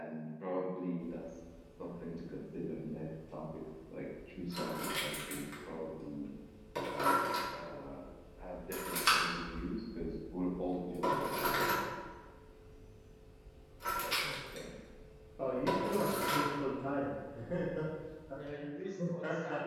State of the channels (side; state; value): both; identical; correlation 1.00